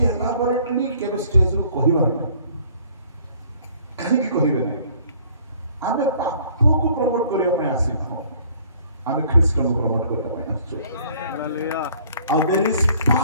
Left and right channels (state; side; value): inverted; both; correlation -0.57